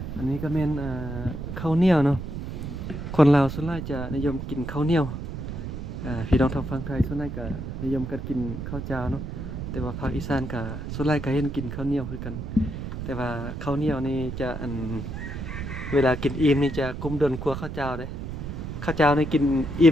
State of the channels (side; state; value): right; noise; rumble, 7 dB below the sound